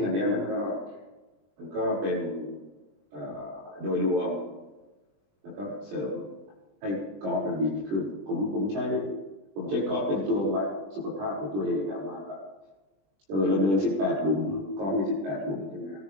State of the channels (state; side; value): late; left; 20 ms